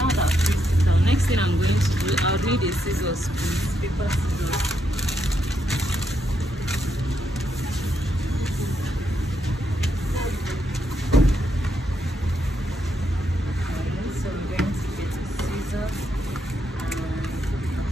that I've traced it out, next thing I'm going to do, I'll need a scissors, please, paper scissors.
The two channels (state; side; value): normal; both; correlation 0.79